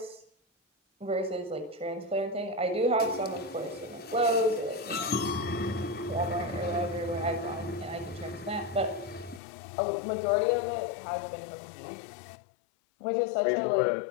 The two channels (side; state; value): right; drops out; at 9.4 s